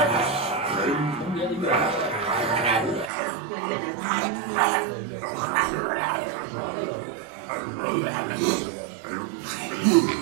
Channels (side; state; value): left; drops out; at 3.1 s